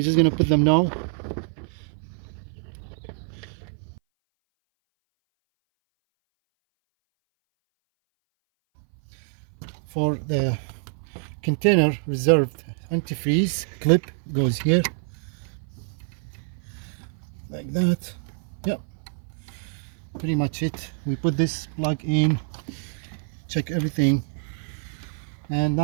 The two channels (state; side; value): silent; left; 58 dB below the other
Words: just gonna put them now. For the container reserved antifreeze clip goes here like that. Yep, pretty much it. We put this plug in, check everything, and